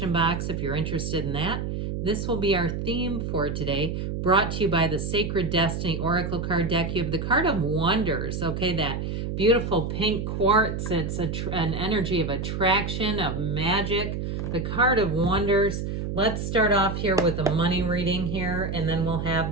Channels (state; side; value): noise; right; hum, 3 dB below the sound